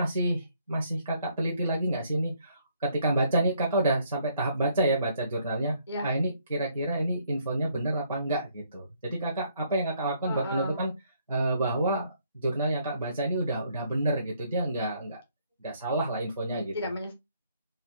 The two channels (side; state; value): both; inverted; correlation -0.68